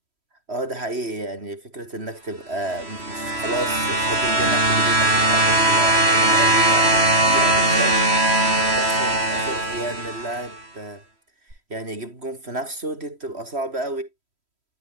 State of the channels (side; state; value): left; late; 3.1 ms